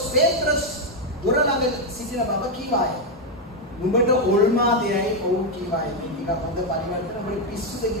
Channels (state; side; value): normal; both; correlation 0.03